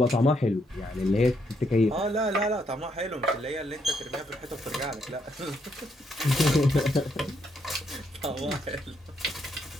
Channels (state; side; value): normal; both; correlation 0.75